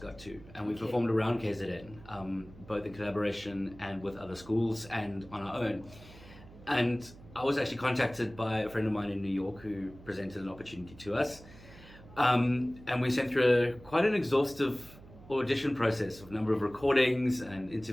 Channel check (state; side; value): noise; right; hum, 20 dB below the sound